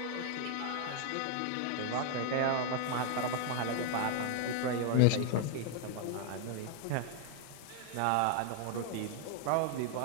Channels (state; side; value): different; both; correlation 0.00